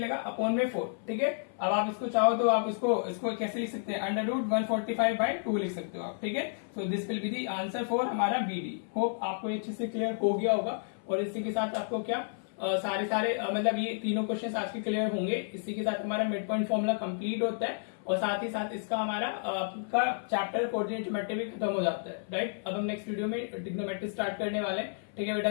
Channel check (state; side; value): silent; right; 57 dB below the other